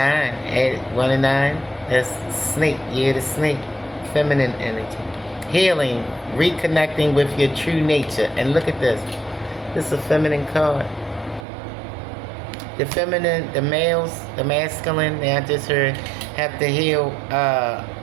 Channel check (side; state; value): left; drops out; at 11.5 s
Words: 1 and 9. That's snake, year the snake. Feminine energy. Healing, reconnecting with your true nature. And look at this. This is a feminine card. The feminine, the males, the masculine, I just heard, have to heal